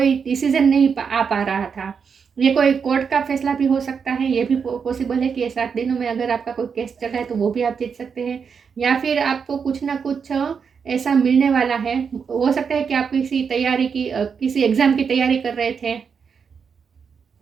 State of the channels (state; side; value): quieter; left; 6.3 dB